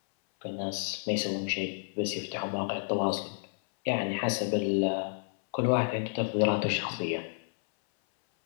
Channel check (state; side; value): silent; right; 57 dB below the other